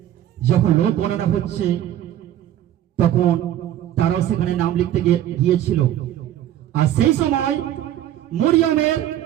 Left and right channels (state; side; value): quieter; left; 12.0 dB